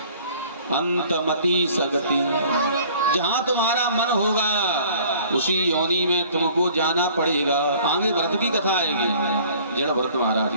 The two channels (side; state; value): both; inverted; correlation -0.53